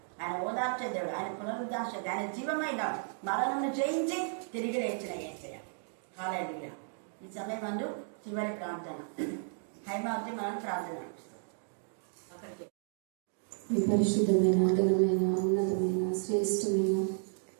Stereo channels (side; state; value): left; silent; 56 dB below the other